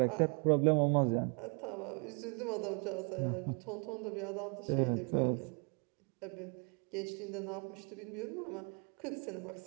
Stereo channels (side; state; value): left; quieter; 35.8 dB